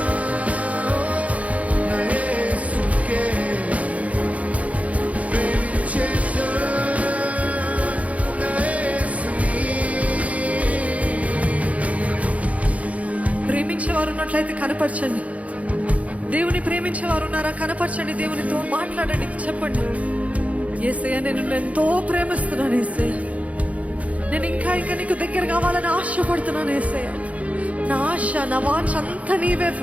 యేసుకే ప్రేమించెను యేసుని. ప్రేమించేవారు ఉన్నట్లయితే కనపరచండి. దేవుని ప్రేమించేవారు ఉన్నారా? కనపరచండి. దేవునితో మాట్లాడండి. చెప్పండి, యేసయ్యా నేను నిన్ను ఎంతో ప్రేమిస్తున్నాను యేసయ్యా. నేను ఇంకా నీకు దగ్గర కావాలని ఆశపడుతున్నాను యేసయ్యా. నా ఆశ, నా వాంఛ అంతా నీవే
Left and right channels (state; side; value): late; left; 0.067 ms